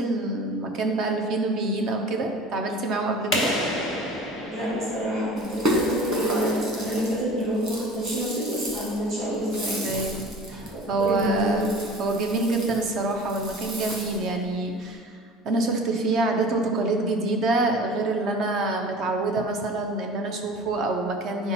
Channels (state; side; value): normal; both; correlation 0.41